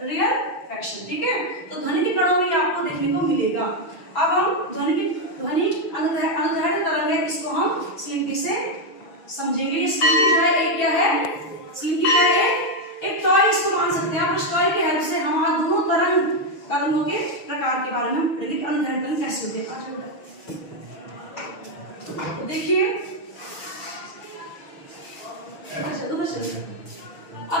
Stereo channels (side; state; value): right; late; 6.2 ms